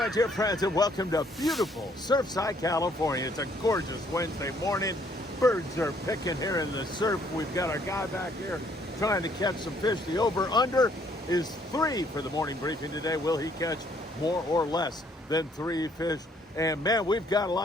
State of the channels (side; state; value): both; normal; correlation 0.65